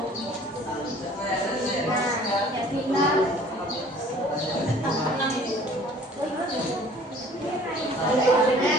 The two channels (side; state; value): both; normal; correlation 0.51